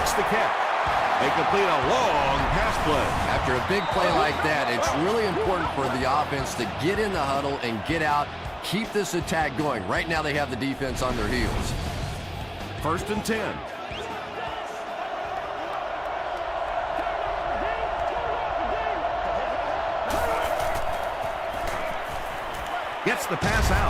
the catch. They complete a long pass play. After a big play like that, it's really important for the offense to get in the huddle and get out, keep this attack going. Right now they have the defense on their heels. 1st and 10. Gets the pass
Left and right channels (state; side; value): identical; both; correlation 1.00